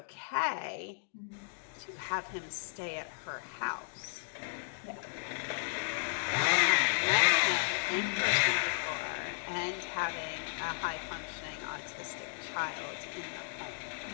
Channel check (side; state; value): right; silent; digital silence